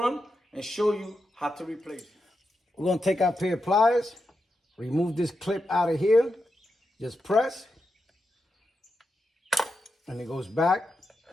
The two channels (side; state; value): both; normal; correlation 0.87